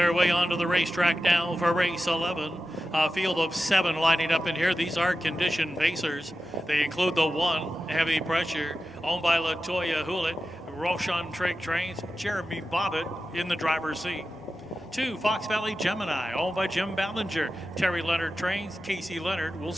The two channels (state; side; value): normal; both; correlation 0.92